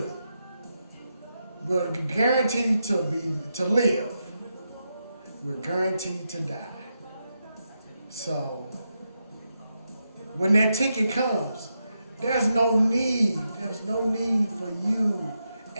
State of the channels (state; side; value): inverted; both; correlation -0.85